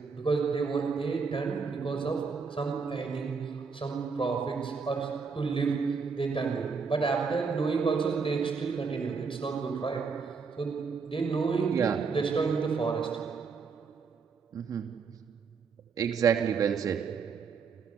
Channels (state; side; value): quieter; left; 5.3 dB